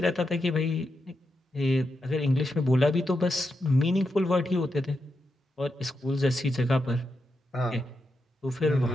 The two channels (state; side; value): normal; both; correlation 0.86